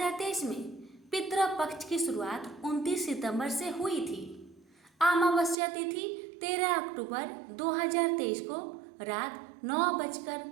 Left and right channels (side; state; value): left; drops out; at 5.6 s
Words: में पितृ पक्ष की शुरुआत 29 सितंबर से हुई थी। अमावस्या तिथि 13 अक्टूबर 2023 को रात